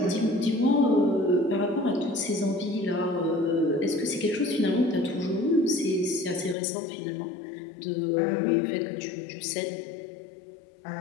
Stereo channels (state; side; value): drops out; right; at 6.6 s